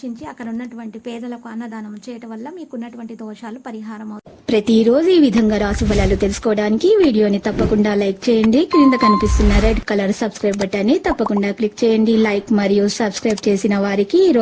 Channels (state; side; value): identical; both; correlation 1.00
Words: అక్కడ ఉన్నటువంటి పేదలకు అన్నదానం చేయటం వల్ల మీకు ఉన్నటువంటి దోషాలు పరిహారం అవుతాయి. ప్రతిరోజు ఈ విధంగా రాశి ఫలాలు తెలుసుకోవడానికి వీడియోని తప్పకుండా లైక్ చేయండి. క్రింద కనిపిస్తున్న రెడ్ కలర్ సబ్స్క్రైబ్ బటన్ ని తప్పకుండా క్లిక్ చేయండి. లైక్ మరియు సబ్స్క్రైబ్ చేసిన వారికి ఈ